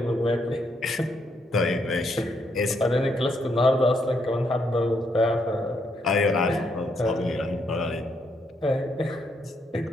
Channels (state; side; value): normal; both; correlation 0.76